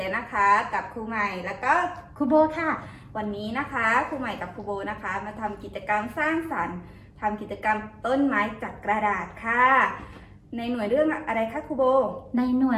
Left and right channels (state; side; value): identical; both; correlation 1.00